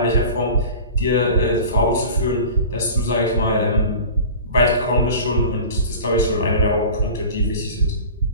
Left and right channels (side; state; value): both; inverted; correlation -0.37